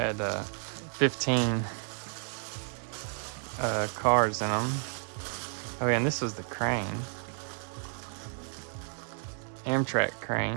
15 cars in them. Oh yeah, and this was the crane. Amtrak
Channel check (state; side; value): silent; left; 57 dB below the other